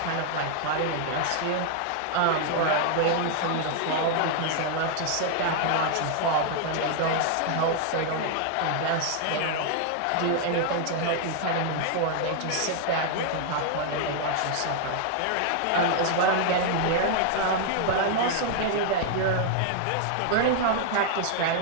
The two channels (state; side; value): different; both; correlation 0.00